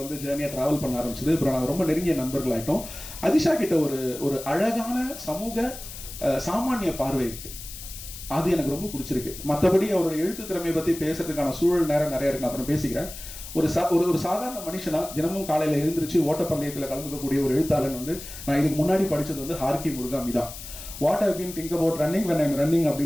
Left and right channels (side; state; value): left; noise; hiss, 12 dB below the sound